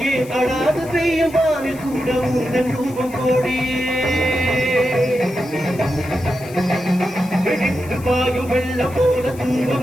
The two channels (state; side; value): noise; left; hiss, 20 dB below the sound